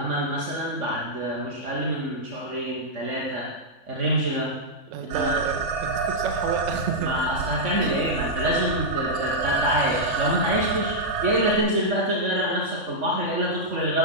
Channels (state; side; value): late; left; 3.5 ms